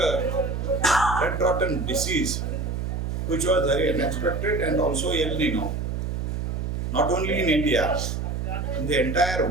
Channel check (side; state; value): right; noise; hum, 2 dB below the sound